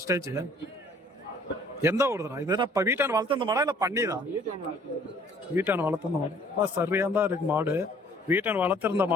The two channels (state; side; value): normal; both; correlation 0.57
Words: ஸ்டேஜ். எந்த ஊருதுனா இது? இப்ப வீட்டான வளர்த்த மாடா இல்ல பண்ணிதான்? வீட்டான வளர்த்த மாடு. சரியா தான் இருக்கு மாடு. வீட்டான வளர்த்திருந்த